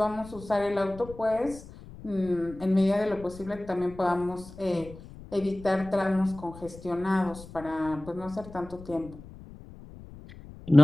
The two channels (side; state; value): left; noise; rumble, 17 dB below the sound